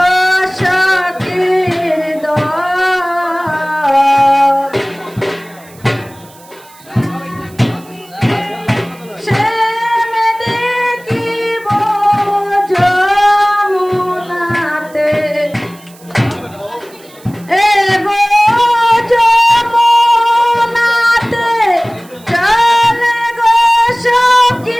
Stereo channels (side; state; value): right; noise; hiss, 25 dB below the sound